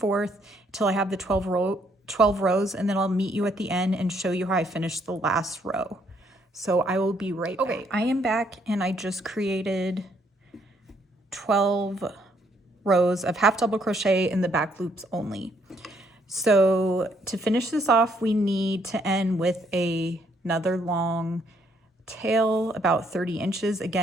till I have the 12 rows, and then I'll meet you at the end and show you how I finished the last row. So I will be right back. Okay, I am back, and I just created 12 rows of half double crochet in the back loops only. So to finish this off, we need to end with another long tail about 30 inches.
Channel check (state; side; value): normal; both; correlation 0.70